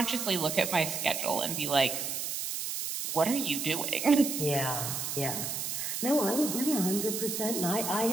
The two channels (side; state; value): right; noise; hiss, 3 dB below the sound